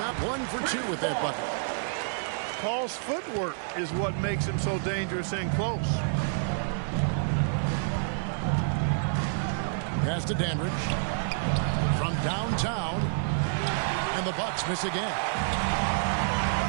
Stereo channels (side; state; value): left; silent; 59 dB below the other